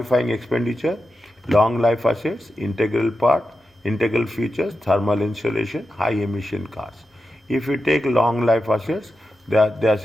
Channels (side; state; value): both; normal; correlation 0.90